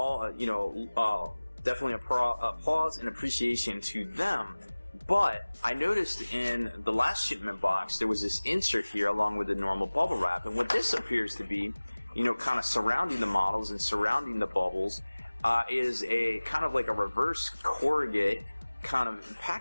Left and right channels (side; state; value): both; inverted; correlation -1.00